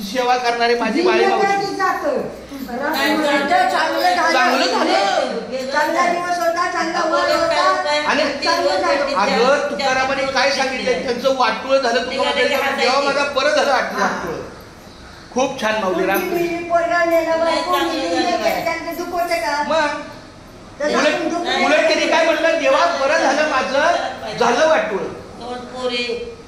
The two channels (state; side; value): identical; both; correlation 1.00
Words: सेवा करणारी माझी बाळी मावशी. आणि अगं तुकारामाने काय सांगितलं त्यांचं वाटोळ झालं. जेव्हा माझा बरं झालं वाटोळ. खूप छान माऊली रामकृष्ण. उलट त्यांनी काय म्हटलं जेव्हा बरं झालं माझं झालं वाटोळ.